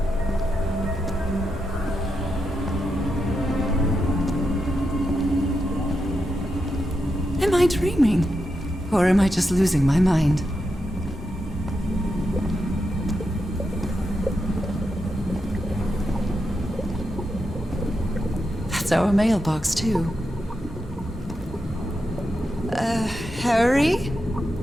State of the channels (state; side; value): normal; both; correlation 0.86